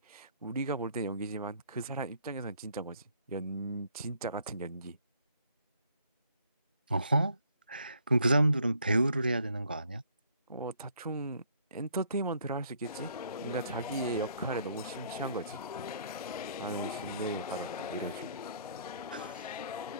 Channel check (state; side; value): inverted; both; correlation -0.65